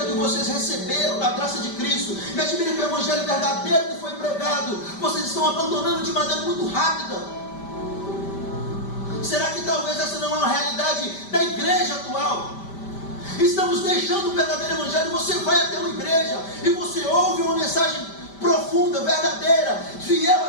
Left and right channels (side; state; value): right; late; 5.1 ms